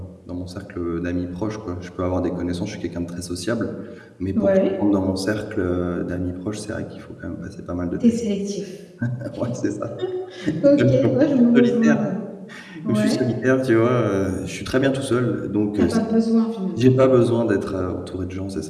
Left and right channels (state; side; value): identical; both; correlation 1.00